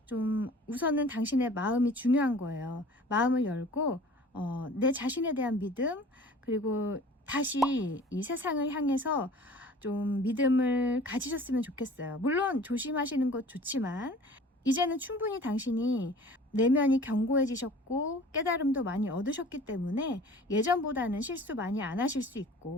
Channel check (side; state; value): both; normal; correlation 0.46